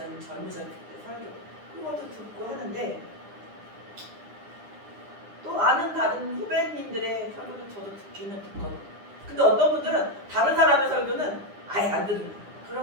젊으셨을 때 설교 그것도 듣고 하는데 또 아는 다른 후배님들의 설교도 저도 듣기는 듣거든요. 근데 어떤 분들은 다른 사람의 설교는 아예 안 들으는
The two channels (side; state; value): left; late; 9.8 ms